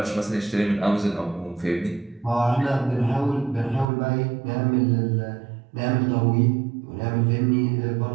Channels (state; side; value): drops out; left; at 3.9 s